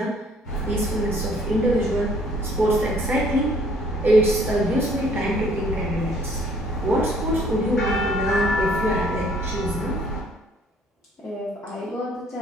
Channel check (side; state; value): both; normal; correlation 0.60